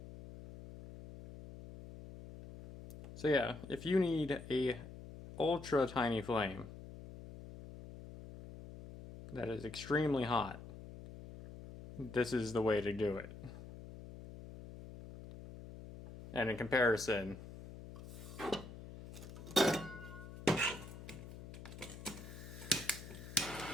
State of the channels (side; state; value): left; noise; hum, 13 dB below the sound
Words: So yeah, if you need a ultra tiny flame that is extremely hot, this is the way to do it. And in comparison,